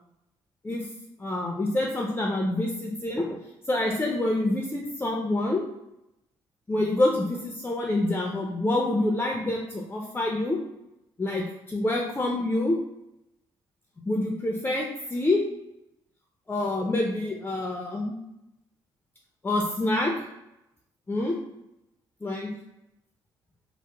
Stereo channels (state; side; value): normal; both; correlation 0.79